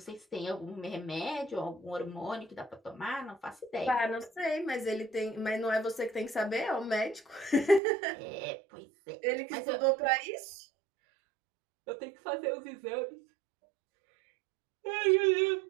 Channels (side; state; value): left; drops out; at 7.8 s